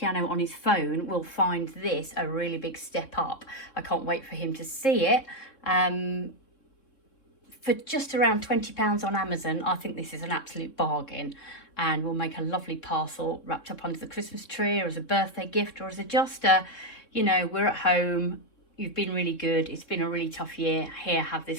on his phone, will find this a really big step up. I can't wait for him to see it. For just around £20 on Amazon, I think this is an absolute bargain, and will make a lovely parcel wrapped up under the Christmas tree, or as a birthday gift, or as we're at home, you've been really good, it's been a really tough year, here, have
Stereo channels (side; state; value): right; late; 3.7 ms